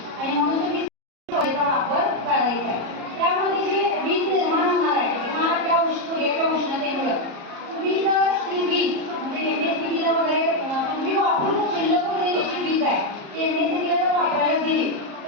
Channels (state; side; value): late; left; 34 ms